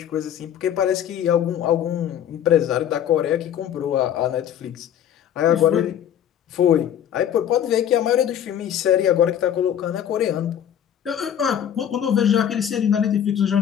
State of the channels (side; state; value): right; quieter; 9.7 dB